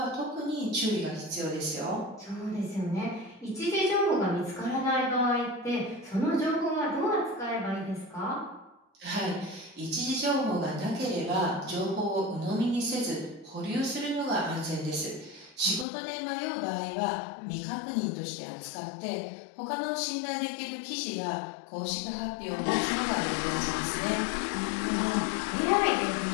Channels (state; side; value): drops out; right; at 15.9 s